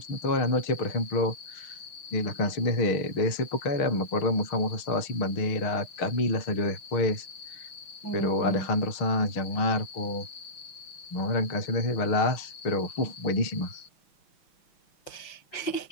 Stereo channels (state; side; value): late; right; 6.4 ms